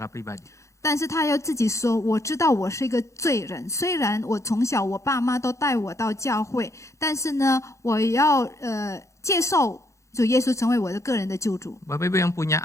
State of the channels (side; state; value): right; late; 0.15 ms